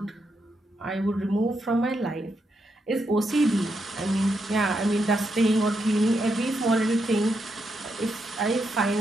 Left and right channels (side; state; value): both; normal; correlation 0.82